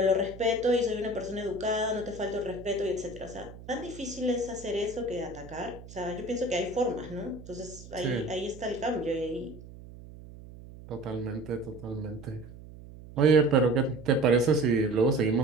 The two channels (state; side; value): noise; right; hum, 16 dB below the sound